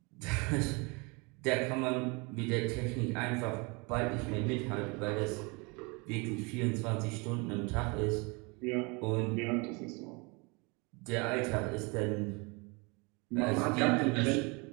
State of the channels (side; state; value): left; quieter; 29.1 dB